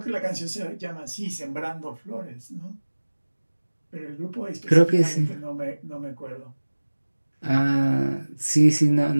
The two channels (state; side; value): inverted; both; correlation -1.00